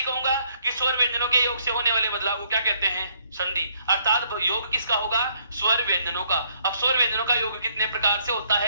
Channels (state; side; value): inverted; both; correlation -0.68